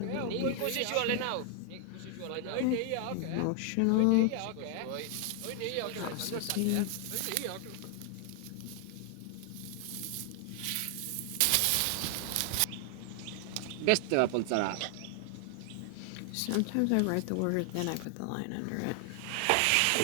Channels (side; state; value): both; different; correlation 0.00